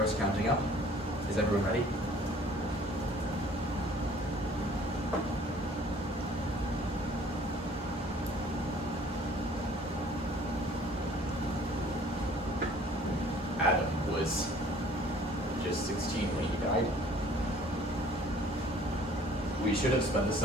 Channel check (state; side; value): normal; both; correlation 0.53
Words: is counting up. Is everyone ready? Adam was just 16 when he died. We should have spent the